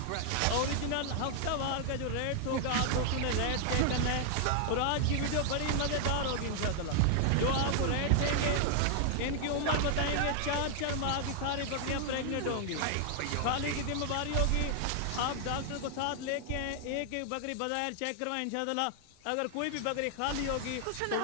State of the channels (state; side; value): different; both; correlation 0.00